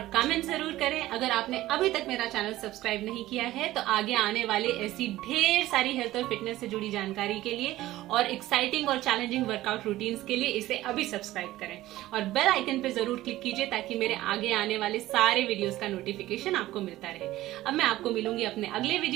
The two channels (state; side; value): quieter; left; 16.0 dB